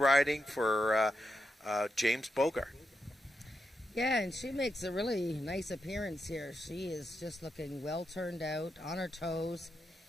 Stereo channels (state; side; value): normal; both; correlation 0.85